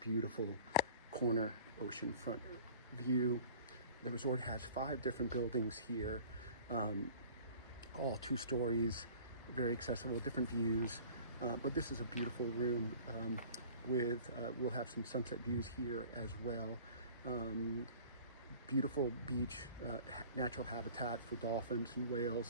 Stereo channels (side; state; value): both; inverted; correlation -0.47